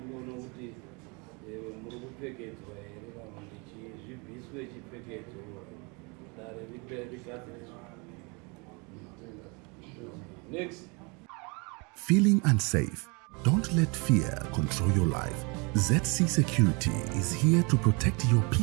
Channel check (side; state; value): left; quieter; 30.3 dB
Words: kuti muri kupfekedzwa here kana kuti zvibviswe chipfekedzo dare rigadziriswa. Next. Feeling unsafe? Don't let fear control your life. ZC Security is here to protect your